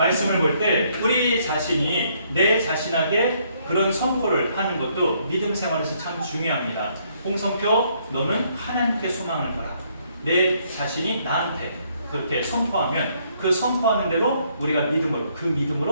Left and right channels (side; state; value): both; inverted; correlation -0.69